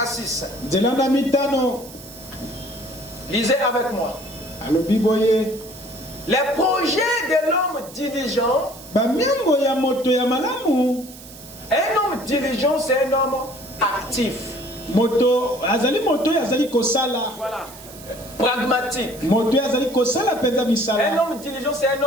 à 6. Lisez avec moi. Les projets de l'homme diligent. Un homme diligent, c'est un homme actif. Voilà. Pragmatique. Un homme diligent, c'est un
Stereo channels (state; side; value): noise; right; hiss, 18 dB below the sound